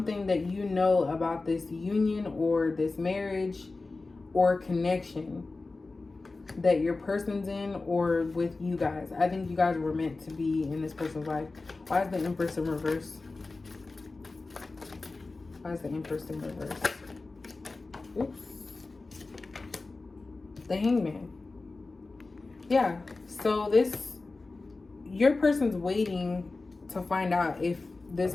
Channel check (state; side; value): quieter; right; 3.6 dB